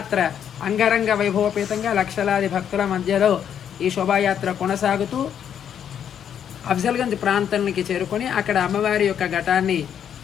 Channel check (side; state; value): right; quieter; 8.9 dB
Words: అంగరంగ వైభవపేతంగా లక్షలాది భక్తుల మధ్యలో ఈ శోభాయాత్ర కొనసాగుతూ అఫ్జల్గంజ్ ప్రాంతానికి చేరుకొని అక్కడ అమ్మవారి యొక్క ఘటాన్ని